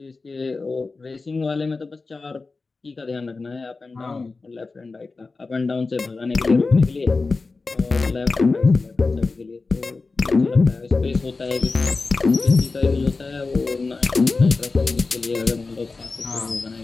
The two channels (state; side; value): quieter; right; 3.9 dB